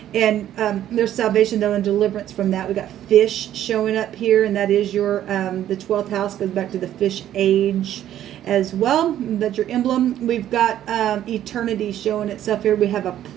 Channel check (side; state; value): left; quieter; 11.7 dB